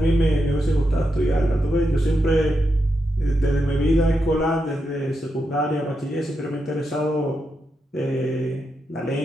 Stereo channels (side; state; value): both; normal; correlation 0.85